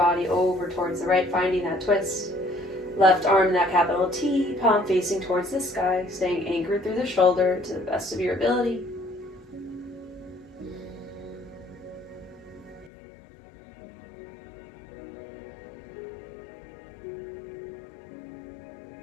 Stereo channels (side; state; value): right; drops out; at 12.9 s